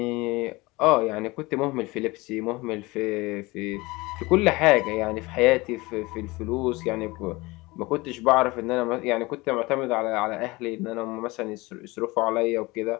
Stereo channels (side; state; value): right; quieter; 22.6 dB